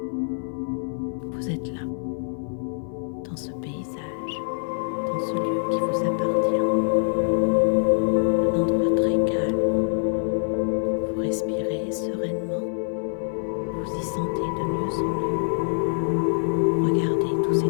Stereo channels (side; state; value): right; silent; 56 dB below the other